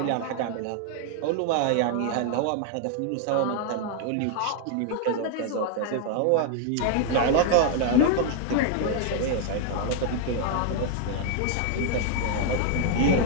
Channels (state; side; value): different; both; correlation 0.00